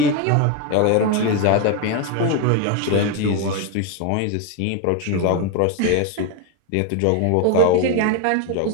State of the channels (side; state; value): both; different; correlation 0.02